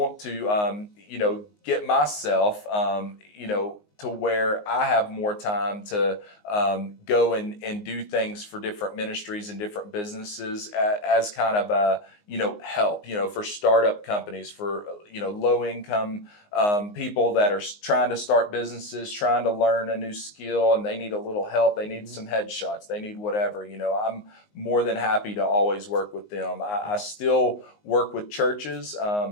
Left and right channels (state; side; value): late; right; 19 ms